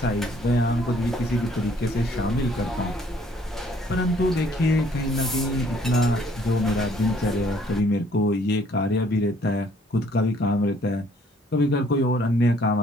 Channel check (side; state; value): both; normal; correlation 0.62